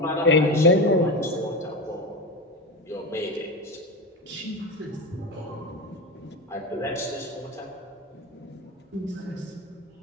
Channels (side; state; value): both; normal; correlation 0.22